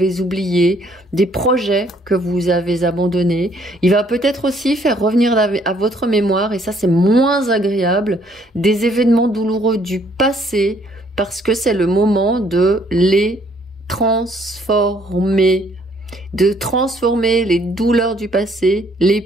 oubliés, des projets que vous avez abandonnés. Il va peut-être aussi faire revenir à votre mémoire, et ça c'est moins agréable, des événements douloureux du passé, parce que c'est le moment de les transformer, de transformer les douleurs du passé, les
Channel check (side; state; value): both; normal; correlation 0.64